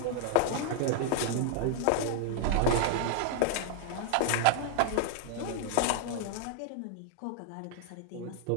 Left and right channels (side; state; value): both; different; correlation 0.00